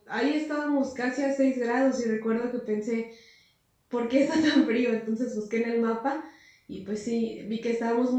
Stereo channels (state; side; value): identical; both; correlation 1.00